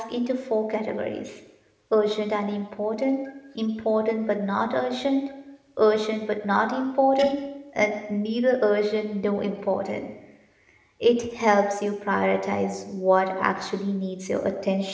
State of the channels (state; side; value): identical; both; correlation 1.00